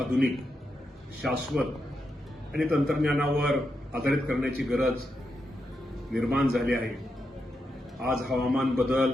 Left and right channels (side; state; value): both; normal; correlation 0.85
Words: शाश्वत आणि तंत्रज्ञानावर आधारित करण्याची गरज निर्माण झाली आहे. आज हवामान